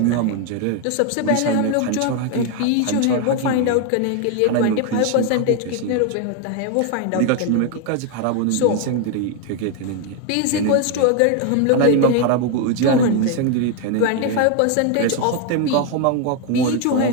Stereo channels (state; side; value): different; both; correlation 0.01